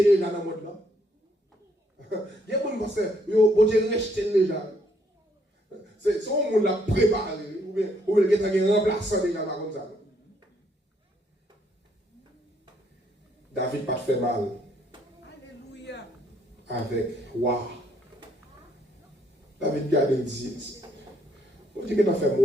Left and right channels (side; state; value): both; normal; correlation 0.70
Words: les gens dans le monde là? Il y a des gens qui pensent, bon Dieu rejeter les gens. C'est son monde l'a préparé, ou bien il y a un remplaçant déjà comme ça. David pas fait mal. Alléluia. Avec roi. David garde et dit, on dit que tu as fait